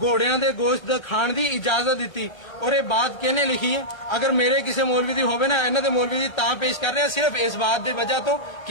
دے گوشت کھان دی اجازت دیتی اور یہ بات کہنے لکھی ہے اگر میرے کسی مولوی دی ہوے نا انہاں دے مولوی دی تاں پیش کر رہے ہیں صرف اس بات دی وجہ تو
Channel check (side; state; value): right; late; 1.2 ms